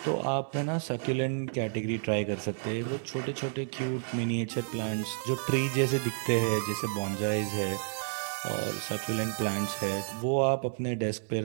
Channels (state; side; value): silent; left; 57 dB below the other